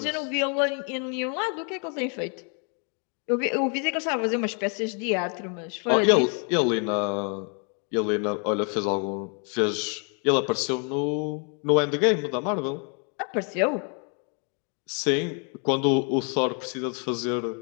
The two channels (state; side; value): quieter; right; 39.3 dB